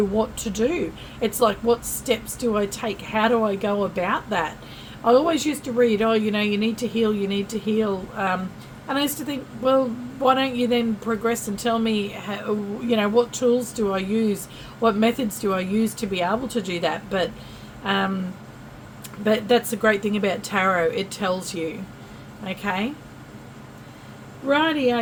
what to do. It's like, what steps do I take? How do I go about that? I always used to read, oh, you need to heal, you need to heal. And I used to think, well, why don't you then progress and tell me, how, what tools do I use? What methods do I use to be able to do that? But that's the great thing about tarot. It tells you. Okay.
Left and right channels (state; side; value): identical; both; correlation 1.00